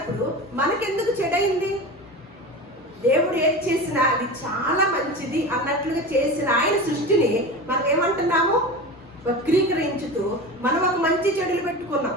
మనకెందుకు చెడైంది? దేవుడు ఏది చేసినా అది చాలా మంచిది అన్నట్లుగా చేసిన ఆయన సృష్టిని మనం ఏమంటున్నాము? వక్రీకరించుతూ మనం ఒక మంచి చెడులు పెట్టుకున్నాం.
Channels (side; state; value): both; normal; correlation 0.29